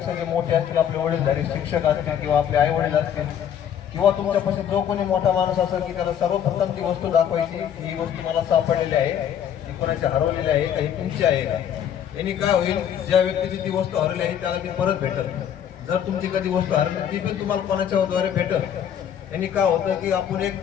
जे मोठे असतील, आपले वडीलधारी शिक्षक असतील किंवा आपले आई वडील असतील किंवा तुमच्यापाशी जो कोणी मोठा माणूस असेल की त्याला सर्वप्रथम ती वस्तू दाखवायची, ही वस्तू मला सापडलेली आहे, ती कोणाची हरवलेली आहे का, ही तुमची आहे का. यांनी काय होईल, ज्या व्यक्तीची ती वस्तू हरवली आहे त्याला ती परत भेटल. जर तुमची कधी वस्तू हरवली ती पण तुम्हाला कोणाच्या द्वारे भेटल. यांनी काय होतं की आपण एक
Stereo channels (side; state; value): right; quieter; 9.2 dB